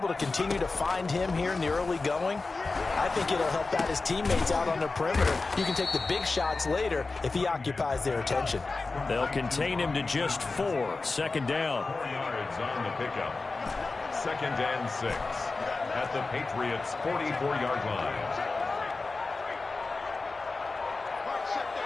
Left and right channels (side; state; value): right; quieter; 3.7 dB